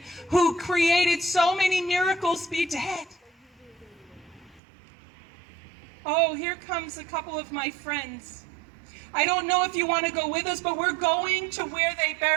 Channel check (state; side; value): drops out; left; at 4.6 s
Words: who created so many miracles be dead? Oh, here comes a couple of my friends. I don't know if you want to go with us, but we're going to where they